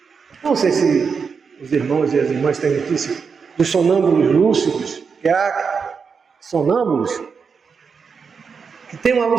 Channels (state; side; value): quieter; left; 5.7 dB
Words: Não sei se os irmãos e as irmãs têm notícia dos sonâmbulos lúcidos, que há sonâmbulos que têm uma